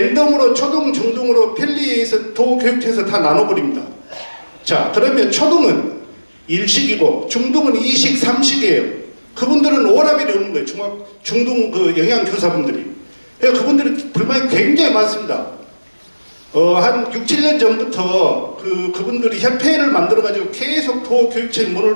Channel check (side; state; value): both; inverted; correlation -1.00